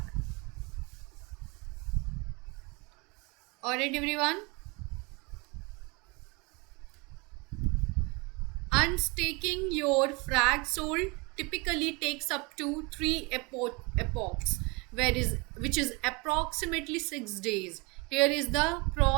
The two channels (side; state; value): left; quieter; 27.8 dB